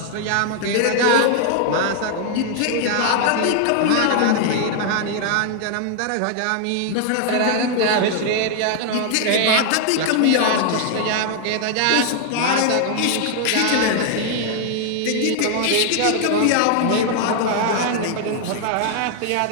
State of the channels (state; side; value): different; both; correlation 0.00